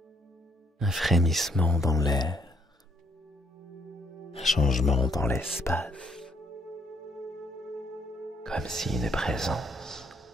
un frémissement dans l'air, un changement dans l'espace, comme si une présence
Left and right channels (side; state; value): both; normal; correlation 0.69